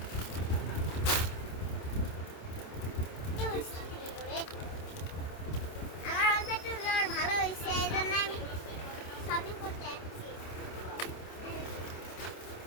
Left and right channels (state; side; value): late; right; 27 ms